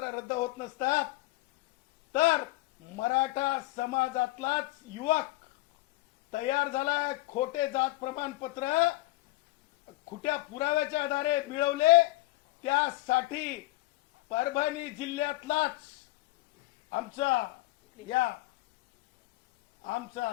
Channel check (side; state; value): right; quieter; 19.3 dB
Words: रद्द होत नसतात तर मराठा समाजातलाच युवक तयार झालाय. खोटे जात प्रमाणपत्र खोट्या पुराव्याच्या आधारे मिळवले, त्यासाठी परभणी जिल्ह्यातलाच आमचा